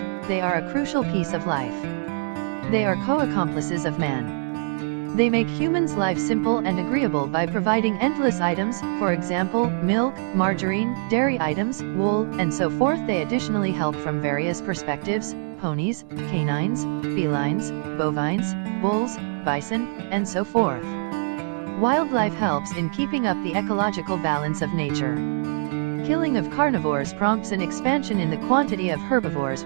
They are a crucial piece of life. They are co-accomplices of man. They make humans' life simple and agreeable by providing endless items, for example, milk, margarine, dairy items, wool, and so forth. They additionally help from various perspectives: ponies, canines, felines, bovines, bulls, bison, and so forth. Wildlife helps in keeping up the ecological balance of nature. Killing of carnivores prompts an expansion in the quantity of herbivores,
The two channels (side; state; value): left; silent; 62 dB below the other